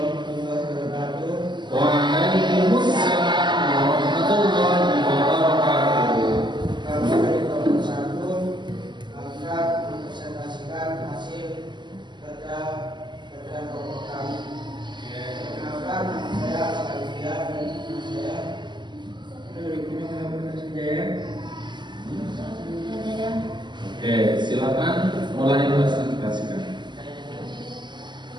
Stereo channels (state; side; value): late; left; 0.22 ms